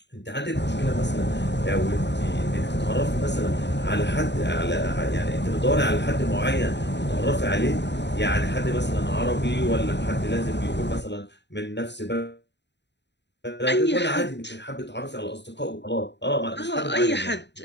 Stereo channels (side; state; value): right; late; 0.51 ms